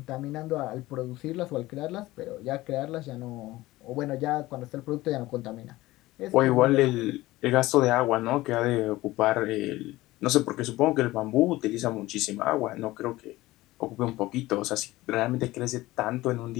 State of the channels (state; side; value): quieter; right; 18.1 dB